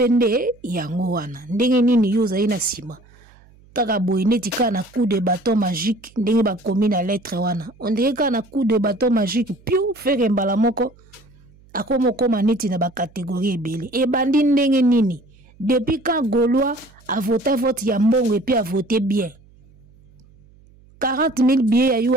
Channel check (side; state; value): right; noise; hum, 28 dB below the sound